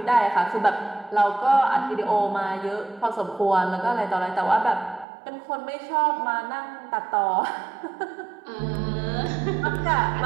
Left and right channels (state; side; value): drops out; left; at 5.1 s